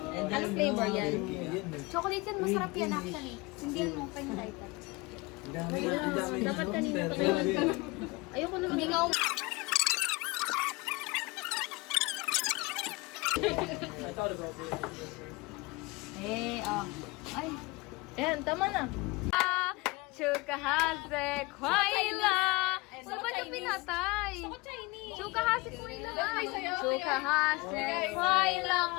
Anong flavor yan? Chocolate yan, masarap yan actually. Hindi yan mo kayo type. Dapat kanina pa kayo. Ayoko naman. Hindi nga Ay. Ayan, tama na. Chukahase kwaila. Ano ba yung pinatay? Chukahase kwaila. Chukahase kwaila.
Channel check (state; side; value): quieter; right; 24.3 dB